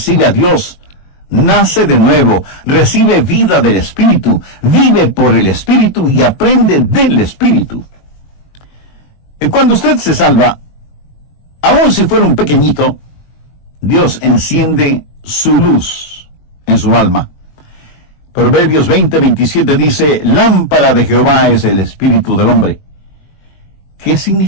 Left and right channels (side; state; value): right; late; 21 ms